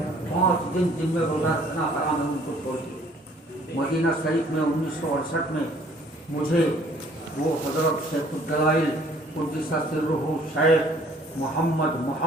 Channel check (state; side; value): normal; both; correlation 0.57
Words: 5 دن جن میں روزہ رکھنا حرام ہے، ان کو چھوڑ کے. مدینہ شریف میں 1968 میں مجھے وہ حضرت شیخ الدلائل قدس سرہ شیخ